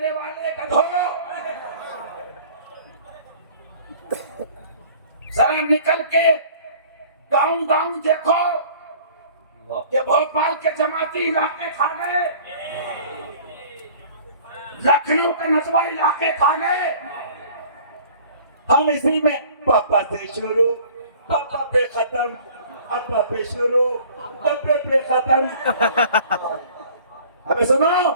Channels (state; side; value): inverted; both; correlation -0.49